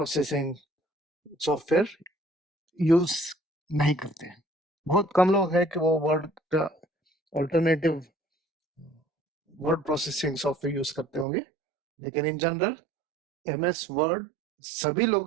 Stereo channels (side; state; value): left; drops out; at 11.2 s